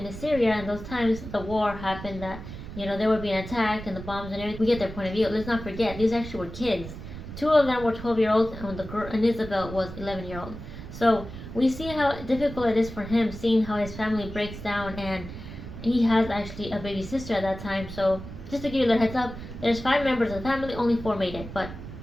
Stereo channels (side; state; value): right; noise; rumble, 11 dB below the sound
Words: Assyria in those times, the war happened that they were being attacked and the bombs and everything. We get their point of view. Let's not forget, these actually were kids. Two of them were 12-year-olds, and the girl and Isabel was 11-year-old. So we see how difficult it is for him, seeing how his family breaks down, and he has actually a baby sister at that time. So just to give you a little heads up, there's 5 members of the family, only 4 made it. But